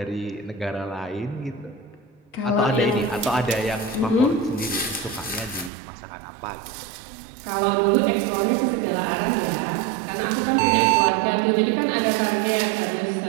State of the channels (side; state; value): left; drops out; at 5.7 s